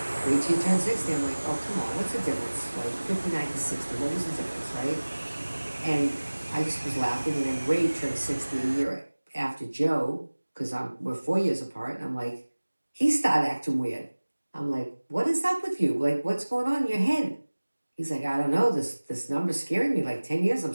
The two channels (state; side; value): inverted; both; correlation -1.00